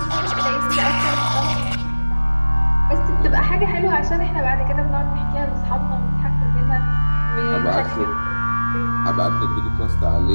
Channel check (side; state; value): both; inverted; correlation -1.00